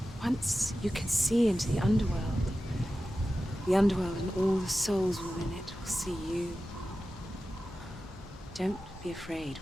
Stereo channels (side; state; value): both; normal; correlation 0.94